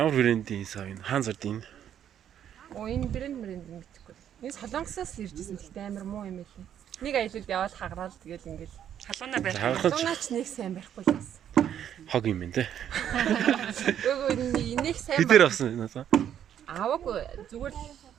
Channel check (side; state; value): left; quieter; 9.8 dB